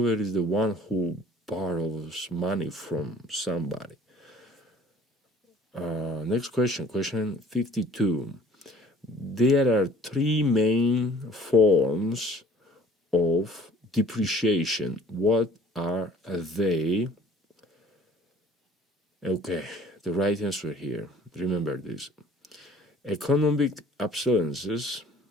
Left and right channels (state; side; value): normal; both; correlation 0.52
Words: is the one who borrows money from somebody. Next question, question 52. There are three main forms of depreciation. What are they? Okay, the right answer here, remember this. Economic obsolescence,